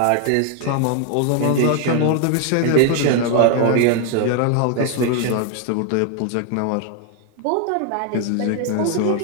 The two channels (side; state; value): both; different; correlation 0.00